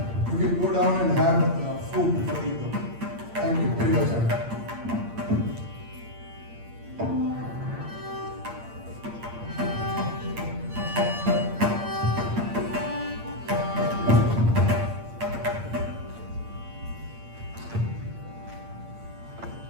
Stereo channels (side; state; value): left; late; 8.7 ms